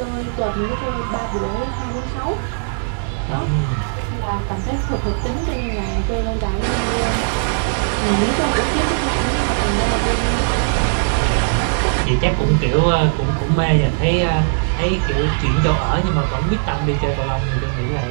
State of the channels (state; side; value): silent; left; digital silence